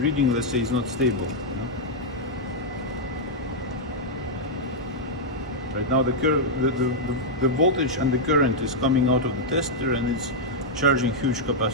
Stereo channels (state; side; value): normal; both; correlation -0.04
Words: let's say, is not stable. Right now the voltage and the current is coming out of the tester and it's charging huge